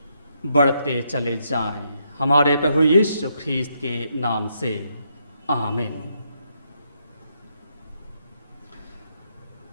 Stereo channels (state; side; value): inverted; both; correlation -0.77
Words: बढ़ते चले जाएं। हमारे प्रभु यीशु ख्रीस्त के नाम से आमीन।